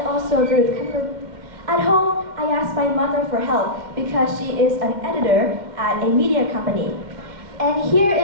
also agree with Kendra. At home, I asked my mother for help because she is an editor at a media company. And here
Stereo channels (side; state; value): left; late; 2.1 ms